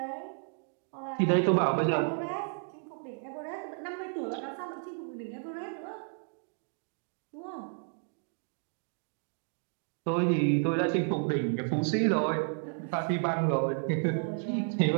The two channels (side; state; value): left; silent; 56 dB below the other